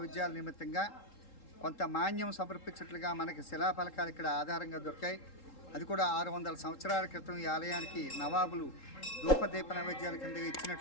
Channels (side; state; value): right; late; 3.8 ms